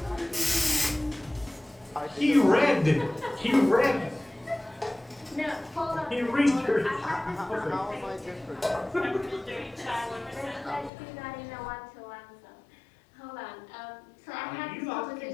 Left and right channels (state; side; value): drops out; right; at 10.9 s